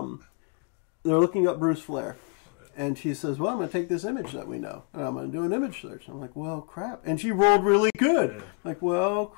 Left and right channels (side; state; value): right; quieter; 32.9 dB